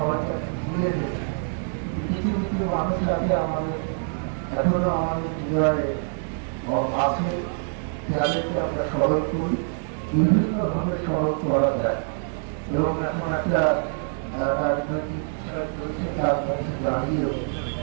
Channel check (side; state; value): left; silent; 62 dB below the other